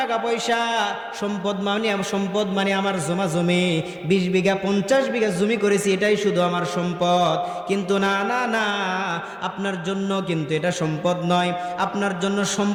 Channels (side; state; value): both; identical; correlation 1.00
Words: পয়সা, সম্পদ মানে আমার জমা জমি, 20 বিঘা 50 বিঘা জমি করেছি, এটাই শুধু আমার সম্পদ। কিন্তু না না না, আপনার জন্য কিন্তু এটা সম্পদ নয়। আপনার জন্য